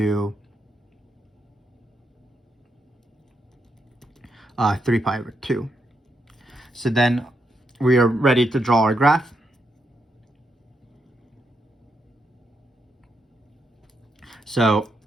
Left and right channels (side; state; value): both; normal; correlation 0.81